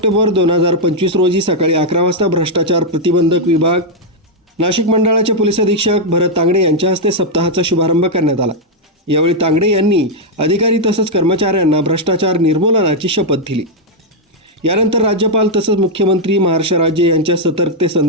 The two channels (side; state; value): both; normal; correlation -0.02